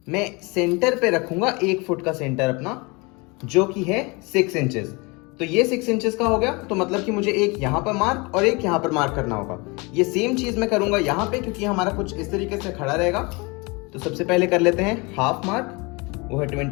मैं सेंटर पे रखूंगा 1 फुट का सेंटर अपना, जो कि है 6 इंचेस। तो ये 6 इंचेस का हो गया, तो मतलब कि मुझे एक यहाँ पर मार्क और एक यहाँ पर मार्क करना होगा। ये सेम चीज मैं करूंगा यहाँ पे क्योंकि हमारा कुछ इस तरीके से खड़ा रहेगा। तो सबसे पहले कर लेते हैं हाफ मार्क, वो है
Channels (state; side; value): quieter; right; 27.5 dB